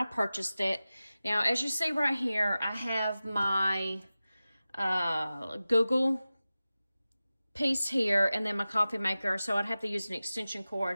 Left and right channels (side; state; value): both; inverted; correlation -0.96